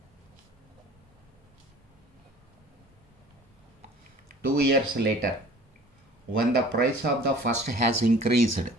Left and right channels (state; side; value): normal; both; correlation 0.47